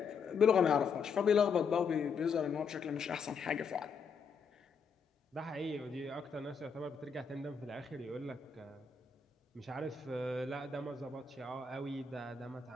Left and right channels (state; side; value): quieter; right; 5.6 dB